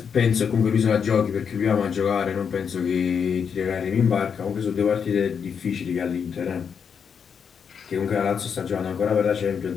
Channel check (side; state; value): right; quieter; 6.8 dB